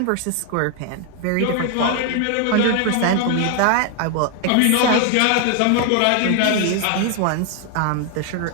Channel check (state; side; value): different; both; correlation 0.00